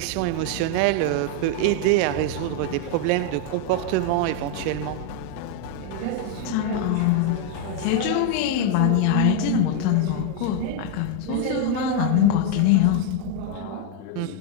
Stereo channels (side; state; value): both; different; correlation 0.01